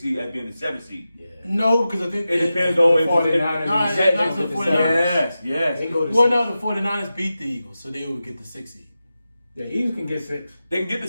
as being the 7th seed. Yeah. No, because I think it depends on the 49ers. Yes. They go to the 49ers beat the Eagles, so they would get the 6th seed. The Eagles can get 6. They can get the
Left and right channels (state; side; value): inverted; both; correlation -0.92